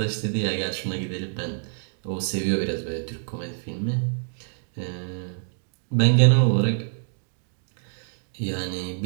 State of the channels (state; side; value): silent; left; digital silence